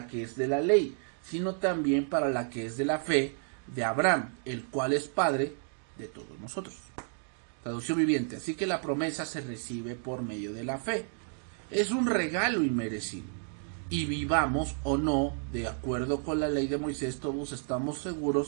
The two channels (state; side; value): silent; left; 57 dB below the other